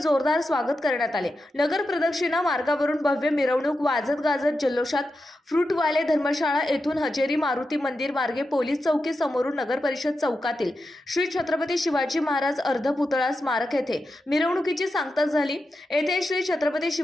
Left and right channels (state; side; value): normal; both; correlation 0.89